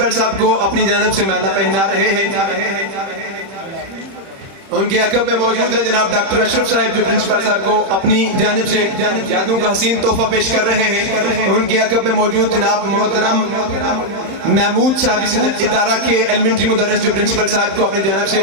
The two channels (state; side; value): late; left; 30 ms